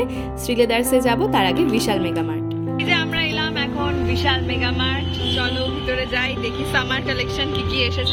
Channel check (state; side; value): identical; both; correlation 1.00